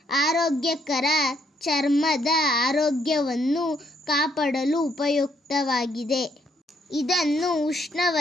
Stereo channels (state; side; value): normal; both; correlation 0.70